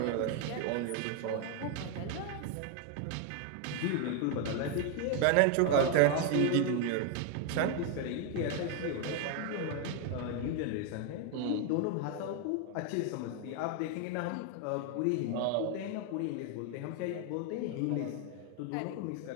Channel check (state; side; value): different; both; correlation 0.01